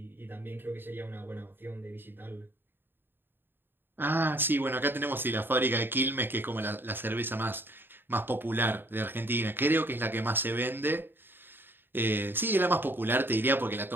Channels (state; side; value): late; left; 0.098 ms